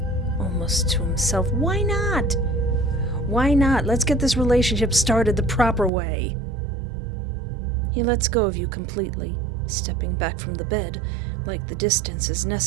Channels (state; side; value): drops out; left; at 5.9 s